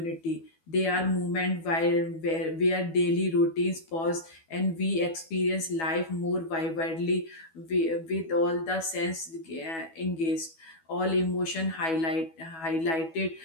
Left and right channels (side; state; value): right; late; 12 ms